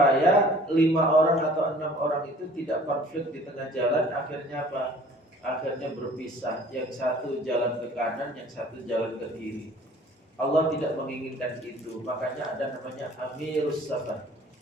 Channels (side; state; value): both; normal; correlation 0.51